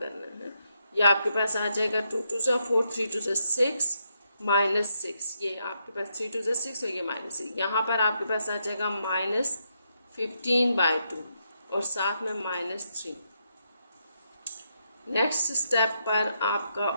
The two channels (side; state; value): both; inverted; correlation -0.80